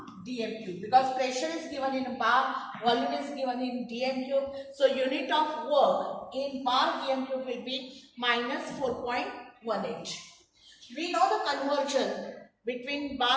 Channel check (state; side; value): identical; both; correlation 1.00